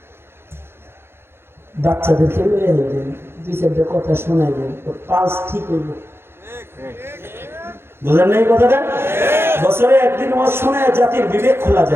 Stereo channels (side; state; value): left; late; 0.11 ms